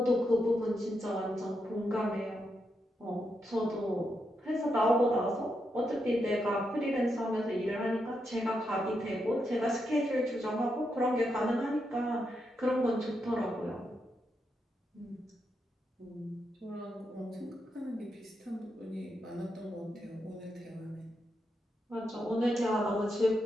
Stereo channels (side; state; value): both; normal; correlation 0.83